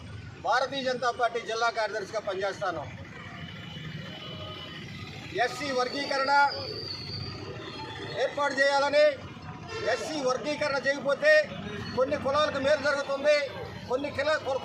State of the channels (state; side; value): identical; both; correlation 1.00